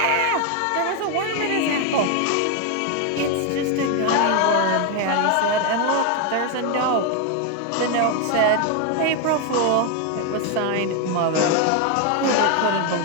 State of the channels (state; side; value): different; both; correlation 0.01